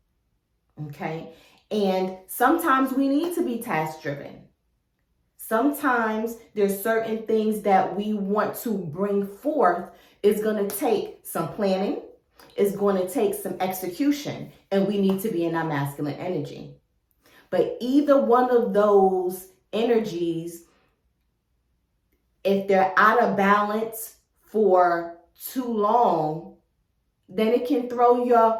okay? And sometimes we need to be task-driven. Sometimes there's certain things that we want to bring forth is going to take some planning. is going to take some execution, and we need to be in our masculine energy. But either one of those energies, if they're out of balance for too long, then it can throw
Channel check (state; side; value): identical; both; correlation 1.00